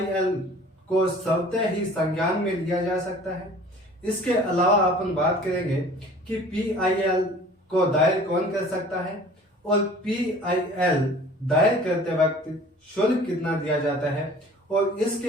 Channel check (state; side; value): normal; both; correlation 0.47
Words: को स्वतः ही संज्ञान में लिया जा सकता है। इसके अलावा अपन बात करेंगे कि PIL को दायर कौन कर सकता है और PIL दायर करते वक्त शुल्क कितना दिया जाता है। और